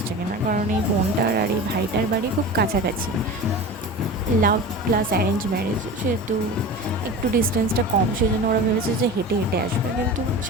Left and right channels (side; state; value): both; normal; correlation 0.32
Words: কিনা, কারণ এই বোনটার আর এই ভাইটার বাড়ি খুব কাছাকাছি। লাভ প্লাস অ্যারেঞ্জ ম্যারেজ, সেহেতু একটু ডিস্টেন্সটা কম, সেই জন্য ওরা ভেবেছে যে হেঁটে হেঁটে আসবে। কিন্তু